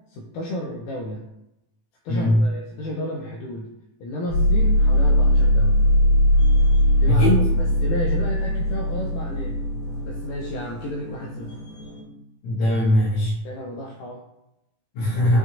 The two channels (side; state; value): right; late; 18 ms